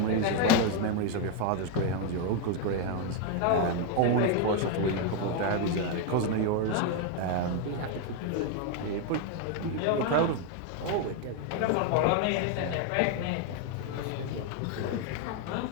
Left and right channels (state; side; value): different; both; correlation 0.01